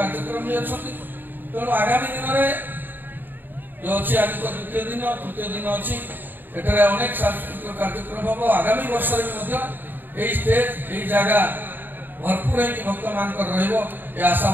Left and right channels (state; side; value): late; left; 0.092 ms